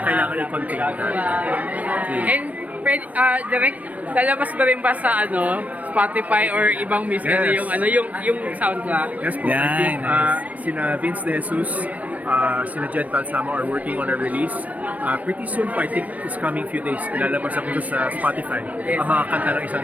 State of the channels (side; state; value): left; late; 0.070 ms